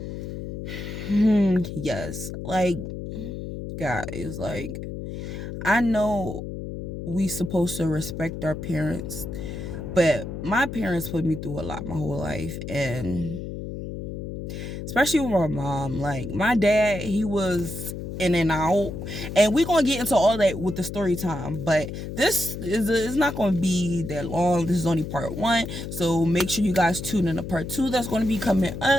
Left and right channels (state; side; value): noise; left; hum, 7 dB below the sound